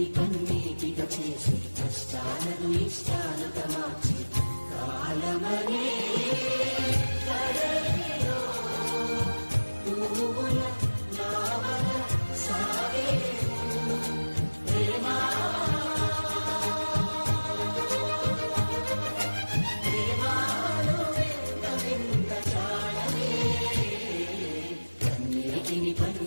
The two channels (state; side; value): inverted; both; correlation -1.00